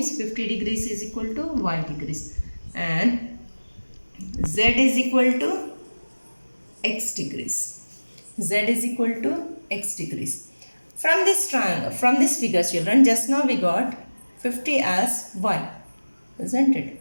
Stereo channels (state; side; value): inverted; both; correlation -1.00